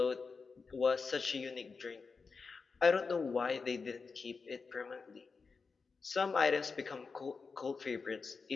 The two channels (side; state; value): right; quieter; 4.8 dB